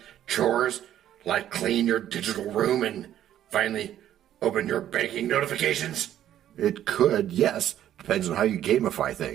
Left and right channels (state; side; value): quieter; left; 11.5 dB